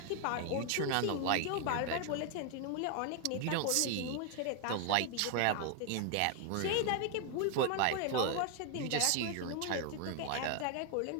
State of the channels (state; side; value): different; both; correlation 0.00